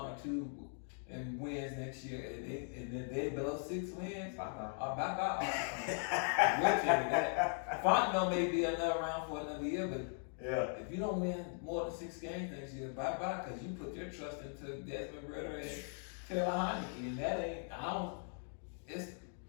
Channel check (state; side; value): silent; right; 52 dB below the other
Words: or 2 in wins next year, and then they below 6 wins, Bye-bye. bye. I will tell you that. Fontenot may be another round for another year, but Yeah. if you don't win more than 6 games next year, bye, because you put your trust into Desmond Ritter and Taylor Heineke, and that ain't.